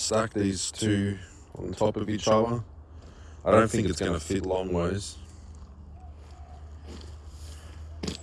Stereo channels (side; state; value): both; identical; correlation 1.00